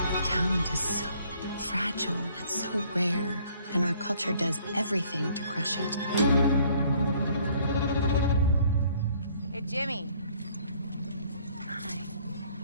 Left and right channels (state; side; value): inverted; both; correlation -0.60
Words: Talent is so fragile and so rare, and our culture does everything to crush it. Hey, Jimmy. Hi.